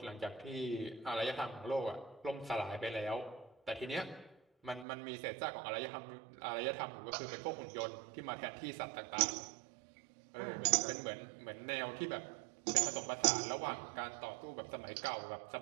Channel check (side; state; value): left; drops out; at 4.9 s